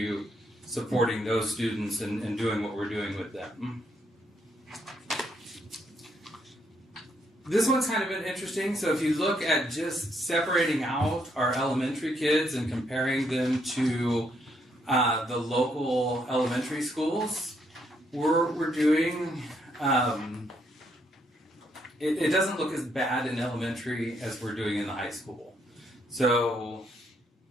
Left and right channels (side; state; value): both; normal; correlation 0.74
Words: supporting those students and doing what we're doing with them. This one's kind of been interesting. So if you look at just separating out our elementary kids and comparing them to the local elementary schools, we're doing, it doesn't look as bad in elementary as we're doing in the high school. So